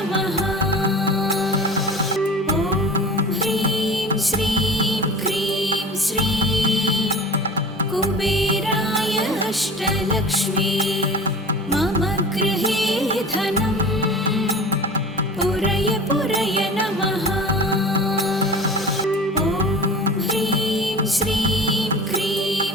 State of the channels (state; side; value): normal; both; correlation 0.38